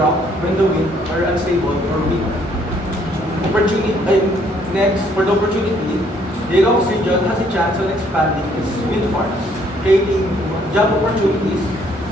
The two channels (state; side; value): normal; both; correlation 0.65